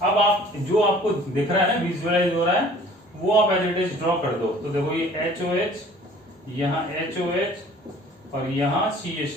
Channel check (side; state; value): both; normal; correlation 0.51